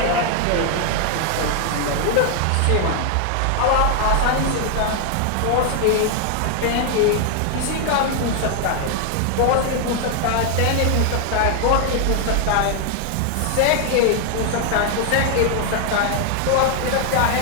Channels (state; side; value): different; both; correlation 0.00